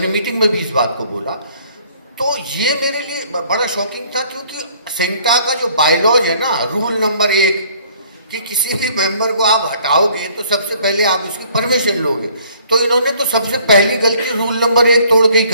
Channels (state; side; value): inverted; both; correlation -0.58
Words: मीटिंग में भी इस बात को बोला। तो ये मेरे लिए बड़ा शॉकिंग था, क्योंकि सेंटा का जो बायलॉज है ना, रूल नंबर 1 कि किसी भी मेंबर को आप हटाओगे तो सबसे पहले आप उसकी परमिशन लोगे। तो इन्होंने तो सबसे पहली गलती रूल नंबर 1 तोड़ के ही